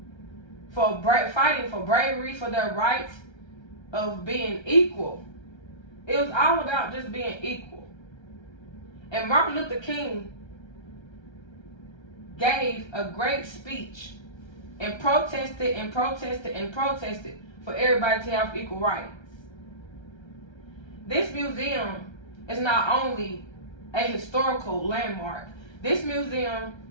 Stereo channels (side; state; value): right; late; 1.3 ms